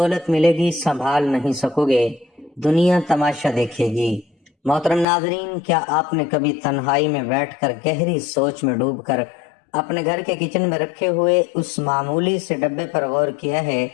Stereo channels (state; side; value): drops out; right; at 5.1 s